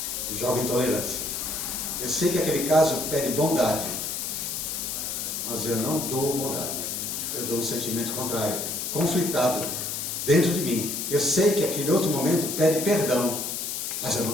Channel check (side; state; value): left; noise; hiss, 3 dB below the sound